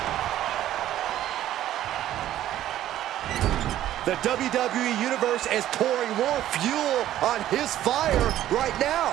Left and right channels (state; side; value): quieter; left; 12.8 dB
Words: The WWE Universe is pouring more fuel on his fire right